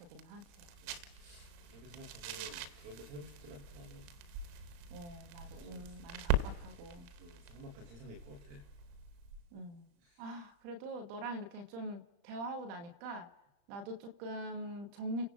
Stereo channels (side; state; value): left; late; 35 ms